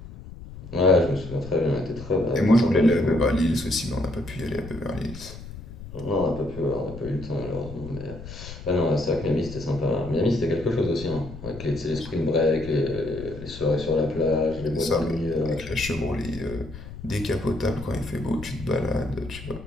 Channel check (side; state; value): left; noise; rumble, 13 dB below the sound